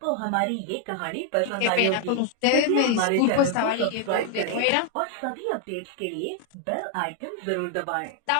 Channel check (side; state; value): both; different; correlation 0.00